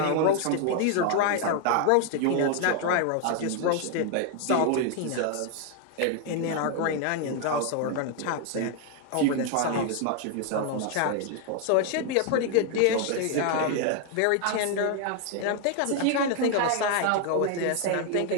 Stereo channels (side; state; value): both; different; correlation 0.00